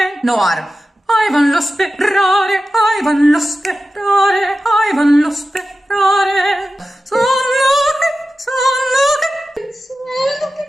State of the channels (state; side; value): normal; both; correlation 0.94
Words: No R. I vanno sperare, I vanno sperare, I vanno sperare.